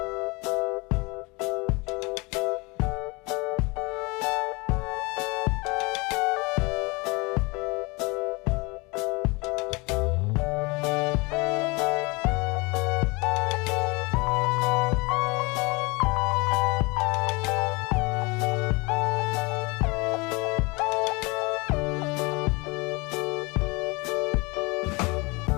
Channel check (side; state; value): right; quieter; 26.5 dB